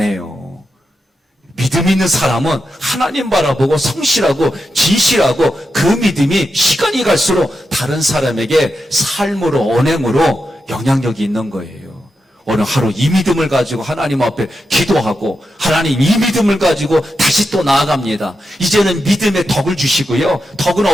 믿음 있는 사람은 하나님 바라보고 성실하고 진실하고 그 믿음이 시간이 갈수록 다른 사람에게 삶으로 언행으로 영향력이 있는 거예요. 오늘 하루 이 믿음을 가지고 하나님 앞에 기도하고 하나님 이 믿음을 가지고 다시 또 나아갑니다. 이제는 믿음의 덕을 주시고요. 덕은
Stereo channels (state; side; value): normal; both; correlation 0.88